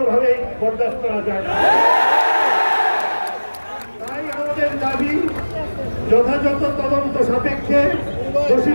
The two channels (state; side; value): inverted; both; correlation -1.00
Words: বরদাস্ত করা যায় না। তাই আমাদের দাবি যথাযথ তদন্ত সাপেক্ষে দোষী